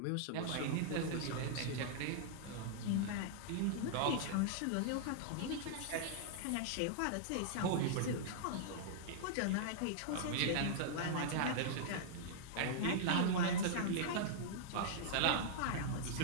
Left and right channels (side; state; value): both; different; correlation -0.01